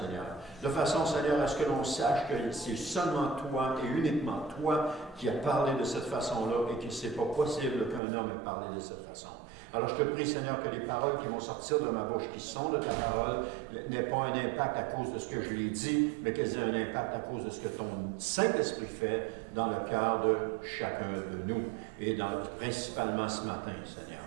De façon Seigneur à ce que l'on sache que c'est seulement toi et uniquement toi qui as parlé de cette façon-là et que ce n'est pas possible qu'un homme ait parlé de cette façon. Alors je te prie, Seigneur, que les paroles qui vont sortir de ma bouche, qui sont de ta parole, n'aient pas un impact à cause de ce que je l'ai dit, mais qu'elles aient un impact à cause de ce que ton Saint-Esprit fait dans le cœur de chacun de nous, et principalement ce matin, Seigneur.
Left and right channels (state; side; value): drops out; left; at 8.0 s